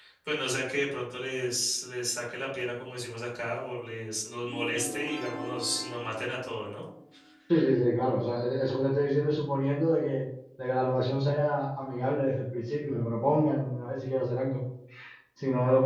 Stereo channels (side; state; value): both; identical; correlation 1.00